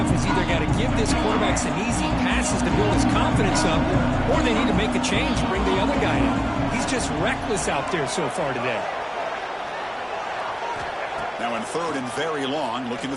has either got to give this quarterback some easy passes to build his confidence up, or they need to make a change and bring the other guy in. He's just reckless out there so far today. Now in 3rd and very long, looking to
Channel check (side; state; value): both; identical; correlation 1.00